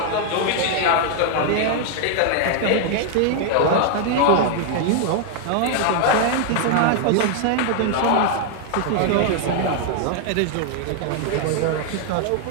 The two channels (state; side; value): different; both; correlation 0.00